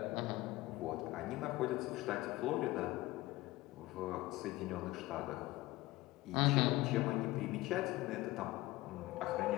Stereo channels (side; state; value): right; quieter; 18.8 dB